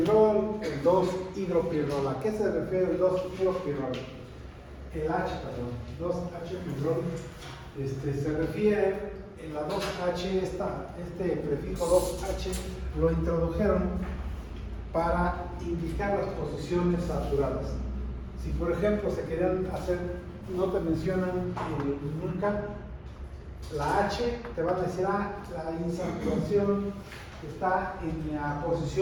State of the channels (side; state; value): both; identical; correlation 1.00